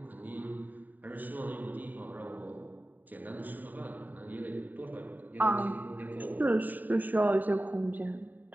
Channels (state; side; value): late; left; 0.087 ms